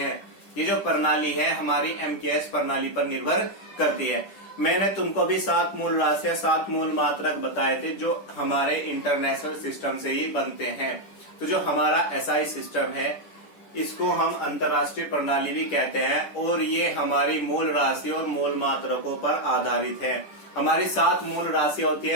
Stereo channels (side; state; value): right; late; 10 ms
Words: ये जो प्रणाली है हमारी MKS प्रणाली पर निर्भर करती है। मैंने तुमको भी 7 मूल राशियां, 7 मूल मात्रक बताए थे जो हमारे इंटरनेशनल सिस्टम से ही बनते हैं। तो जो हमारा SI सिस्टम है इसको हम अंतरराष्ट्रीय प्रणाली भी कहते हैं और ये हमारी मूल राशि और मूल मात्रकों पर आधारित है। हमारी 7 मूल राशियां होती